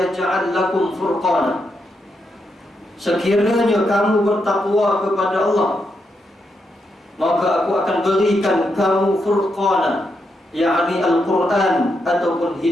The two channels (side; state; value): both; normal; correlation 0.82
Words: lakum furqana. Sekiranya kamu bertakwa kepada Allah, maka aku akan berikan kamu furqana, yakni Al-Quran ataupun